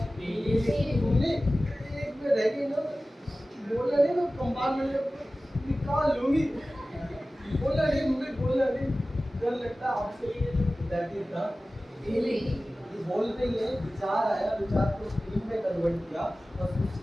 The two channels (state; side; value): normal; both; correlation 0.96